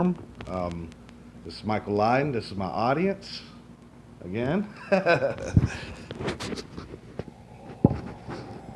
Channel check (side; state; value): both; identical; correlation 1.00